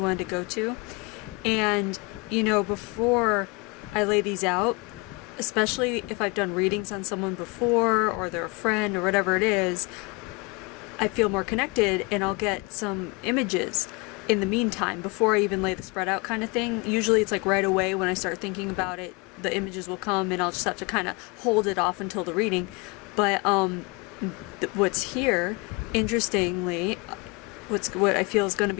to go to. And, before I lay these out, especially if I've done readings on someone before or they're a friend or whatever it is, I feel more connected and I'll get some images in the meantime before I even lay the spread out kind of thing. Usually it's like right away when I start thinking about it, the images will come and I'll just have to kind of hold it off until the reading. But what's here, interestingly, what I feel is going to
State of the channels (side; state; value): right; quieter; 27.8 dB